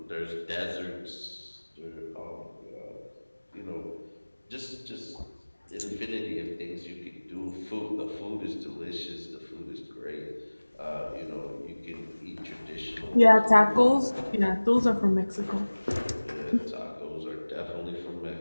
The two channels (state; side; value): inverted; both; correlation -1.00